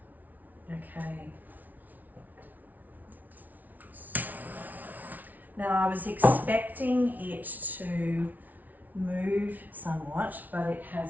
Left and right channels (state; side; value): late; left; 0.079 ms